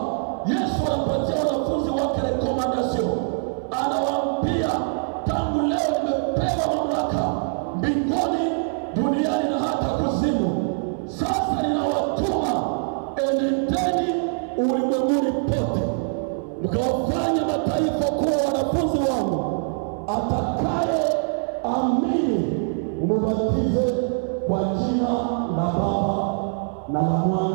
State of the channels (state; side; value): silent; left; 57 dB below the other